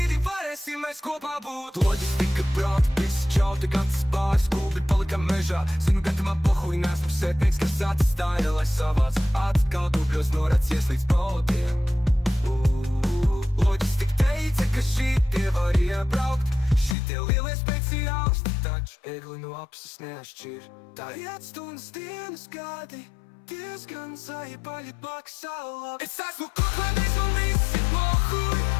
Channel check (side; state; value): right; drops out; at 16.9 s